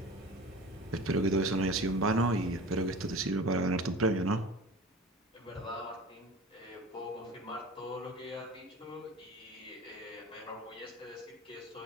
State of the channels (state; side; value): normal; both; correlation 0.36